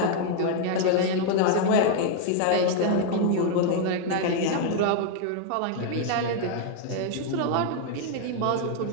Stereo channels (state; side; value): different; both; correlation 0.00